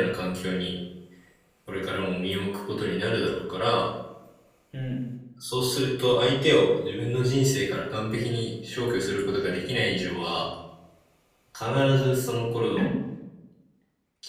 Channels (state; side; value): identical; both; correlation 1.00